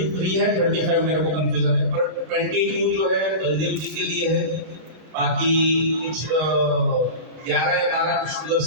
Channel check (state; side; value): late; left; 32 ms